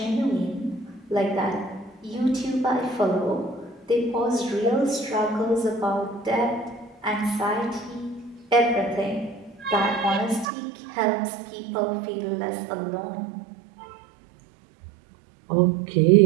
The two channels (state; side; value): drops out; left; at 10.5 s